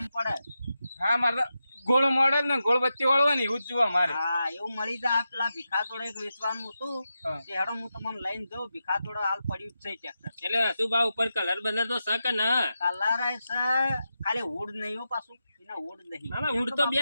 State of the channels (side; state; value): both; inverted; correlation -0.89